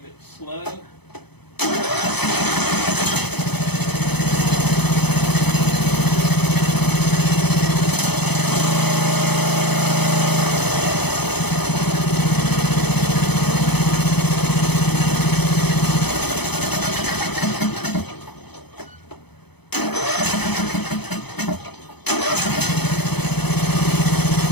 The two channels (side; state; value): right; late; 0.98 ms